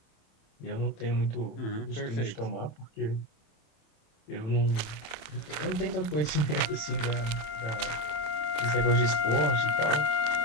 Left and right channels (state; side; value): late; right; 27 ms